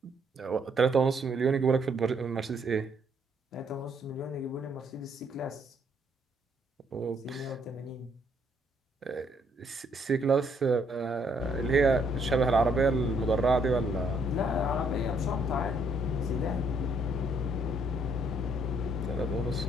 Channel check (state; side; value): normal; both; correlation 0.69